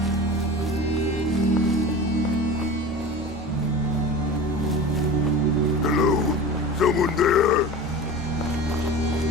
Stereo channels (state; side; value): normal; both; correlation 0.34